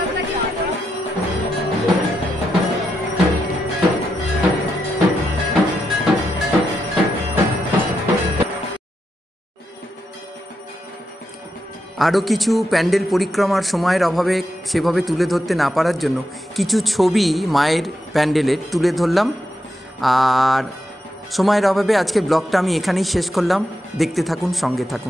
আরও কিছু প্যান্ডেল পরিক্রমার সময়ের অভাবে সেভাবে তুলে ধরতে না পারার জন্য কিছু ছবি মায়ের প্যান্ডেলের তুলে ধরলাম। আর সময়ের অভাবে আজকে ব্লগটা আমি এখানেই শেষ করলাম। দেখতে থাকুন, সঙ্গে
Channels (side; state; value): both; normal; correlation 0.85